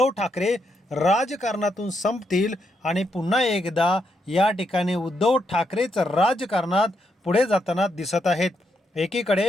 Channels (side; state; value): both; normal; correlation 0.80